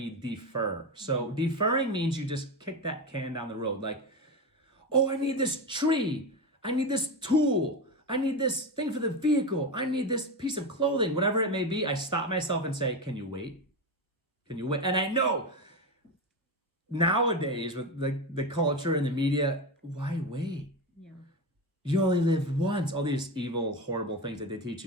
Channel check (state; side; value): normal; both; correlation 0.18